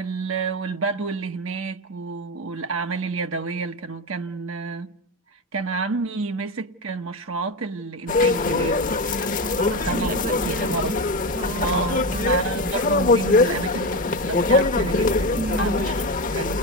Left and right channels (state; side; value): normal; both; correlation 0.17